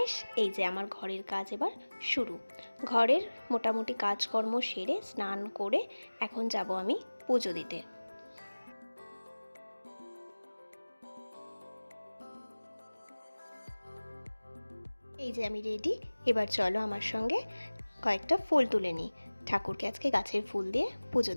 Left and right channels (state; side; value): inverted; both; correlation -1.00